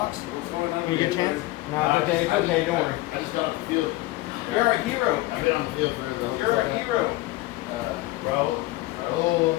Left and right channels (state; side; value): quieter; right; 18.8 dB